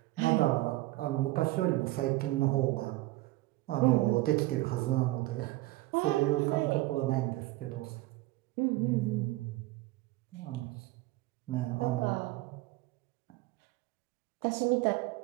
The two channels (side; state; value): left; quieter; 19.0 dB